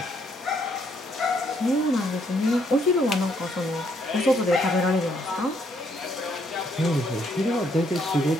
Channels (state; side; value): normal; both; correlation 0.71